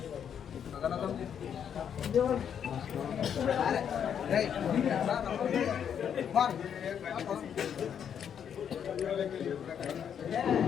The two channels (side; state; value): right; quieter; 8.3 dB